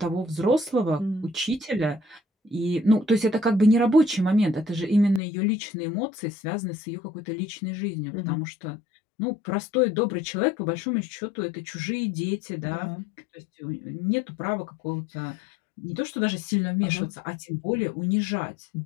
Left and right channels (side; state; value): right; drops out; at 5.2 s